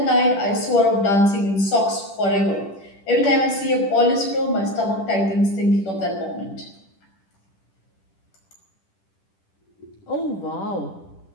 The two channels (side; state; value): right; late; 10 ms